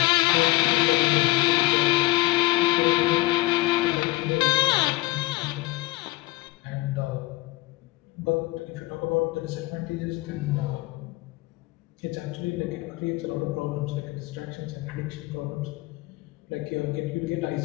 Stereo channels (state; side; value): quieter; right; 20.2 dB